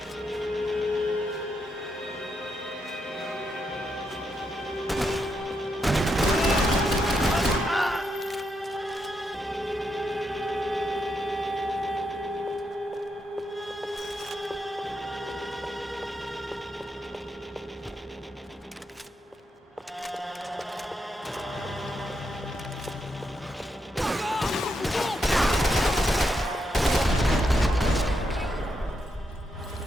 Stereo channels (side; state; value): both; normal; correlation 0.82